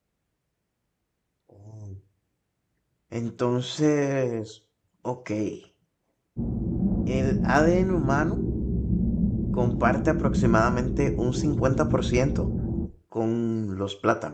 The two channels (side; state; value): both; identical; correlation 1.00